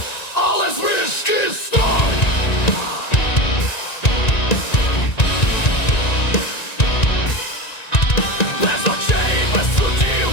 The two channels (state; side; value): late; right; 1.9 ms